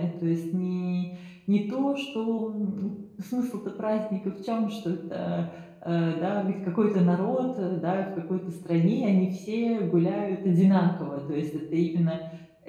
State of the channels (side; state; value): both; identical; correlation 1.00